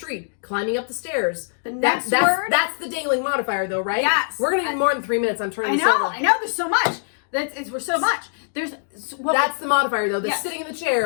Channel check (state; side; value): silent; right; digital silence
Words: climbing up the stairs, The next word? that's the dangling modifier, though, right? Yes. We're gonna need more than 3 minutes. I'm turning this over. I know. There's so much. We're so much. That's the modifier, though. The Yes. sitting in the